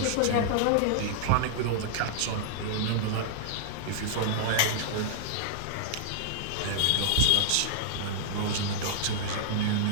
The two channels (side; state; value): both; different; correlation -0.01